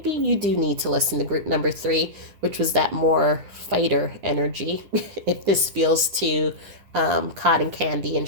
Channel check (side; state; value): left; late; 10 ms